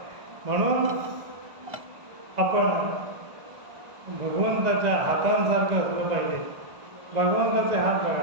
म्हणून आपण भगवंताच्या हातांसारखं असलं पाहिजे. भगवंताचे हात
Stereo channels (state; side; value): late; left; 1.5 ms